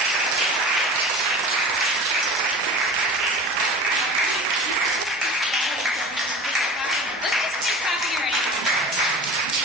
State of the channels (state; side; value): normal; both; correlation 0.36